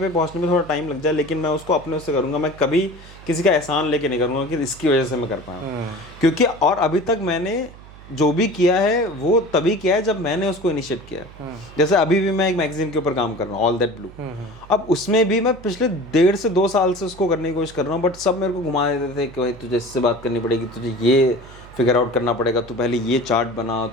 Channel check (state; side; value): noise; right; hum, 19 dB below the sound